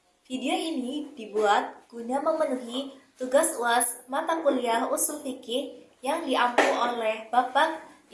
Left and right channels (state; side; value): identical; both; correlation 1.00